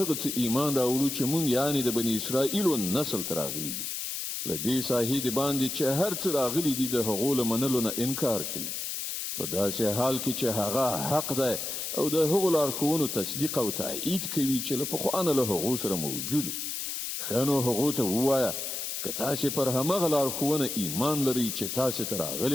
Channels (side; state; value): left; noise; hiss, 4 dB below the sound